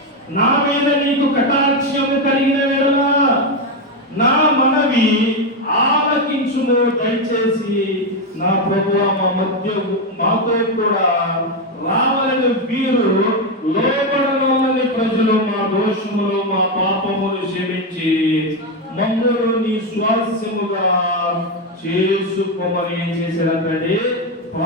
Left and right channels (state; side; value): normal; both; correlation 0.08